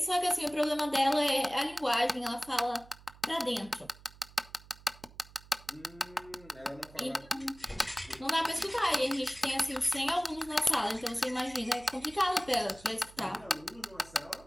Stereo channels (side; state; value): right; noise; hum, 22 dB below the sound